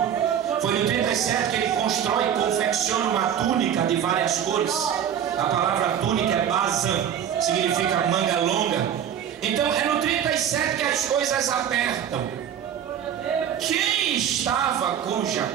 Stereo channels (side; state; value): left; quieter; 9.2 dB